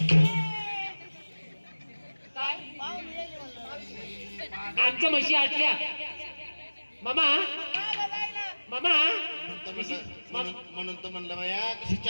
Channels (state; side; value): inverted; both; correlation -1.00